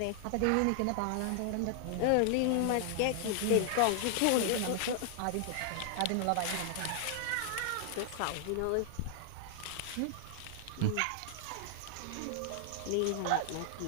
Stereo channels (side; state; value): both; different; correlation 0.00